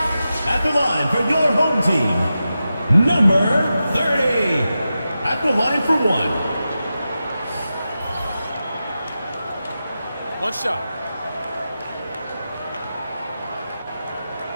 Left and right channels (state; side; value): inverted; both; correlation -0.91